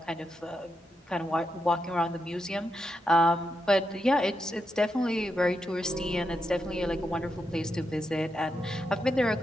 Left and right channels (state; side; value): normal; both; correlation 0.84